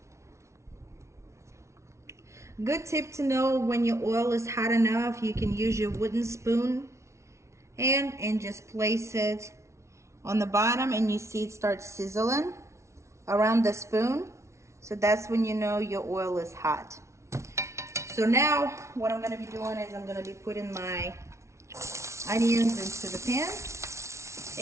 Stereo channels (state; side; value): late; left; 0.13 ms